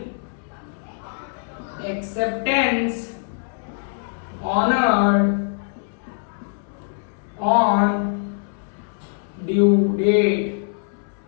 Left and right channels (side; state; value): right; silent; digital silence